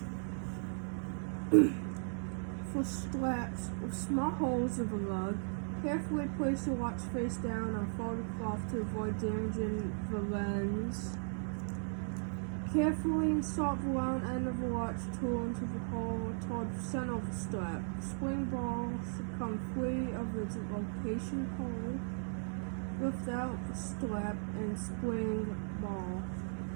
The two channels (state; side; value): silent; left; digital silence